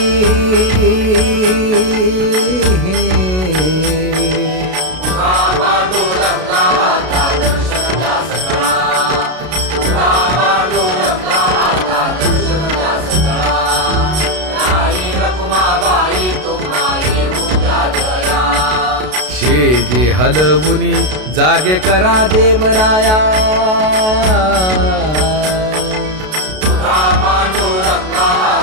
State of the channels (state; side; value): late; left; 32 ms